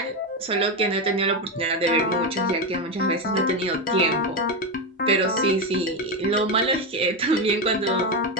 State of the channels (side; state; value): both; normal; correlation 0.11